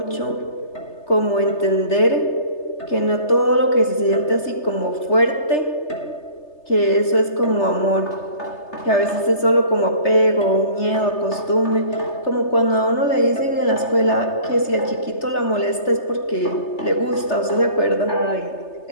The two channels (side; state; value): right; late; 3.3 ms